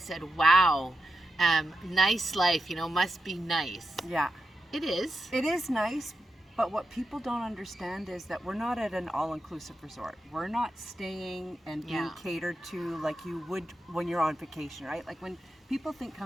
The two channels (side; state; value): both; normal; correlation 0.87